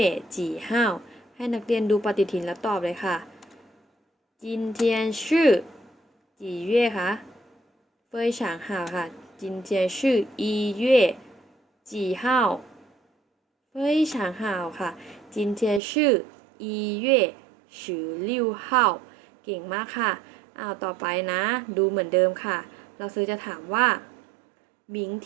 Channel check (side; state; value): left; drops out; at 15.8 s